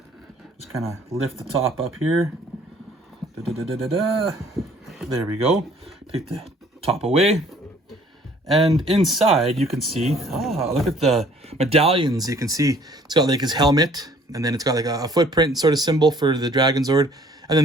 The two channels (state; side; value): normal; both; correlation 0.57